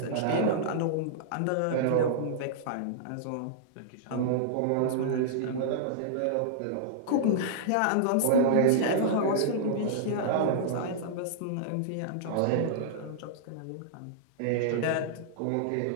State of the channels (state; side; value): different; both; correlation -0.02